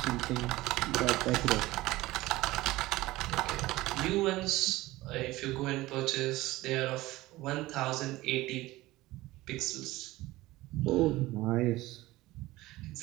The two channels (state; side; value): quieter; left; 18.4 dB